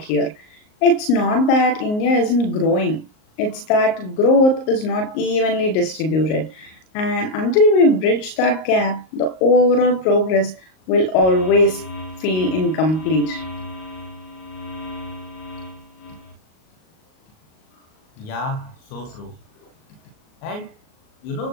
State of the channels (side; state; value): right; late; 38 ms